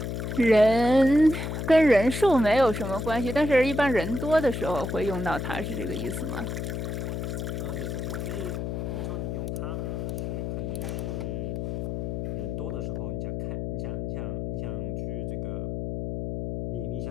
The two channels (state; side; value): noise; left; hum, 3 dB below the sound